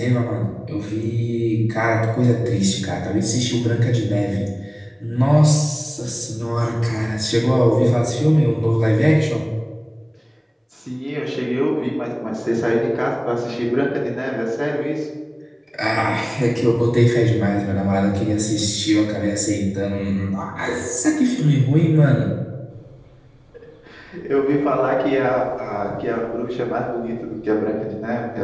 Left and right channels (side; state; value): both; identical; correlation 1.00